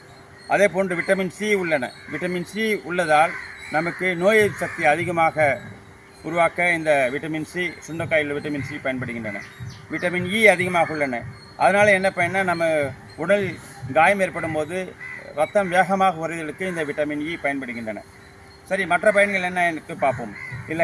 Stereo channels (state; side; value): identical; both; correlation 1.00